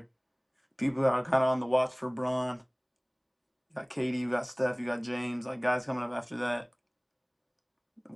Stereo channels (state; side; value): identical; both; correlation 1.00